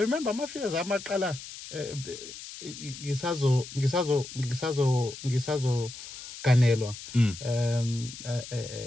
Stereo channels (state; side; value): noise; left; hiss, 13 dB below the sound